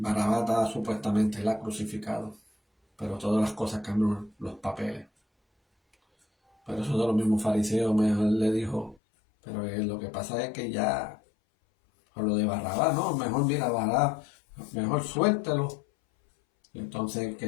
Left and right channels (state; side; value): drops out; right; at 9.0 s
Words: estaba supuestamente crucificado. Pero todas las cosas cambian los papeles. Pero eso de los mismos fariseos mejor le dijo, pero lo que pasa es que ya, por lo de Barrabás, no, mejor mira Barrabás, mejor suéltelo. Y entonces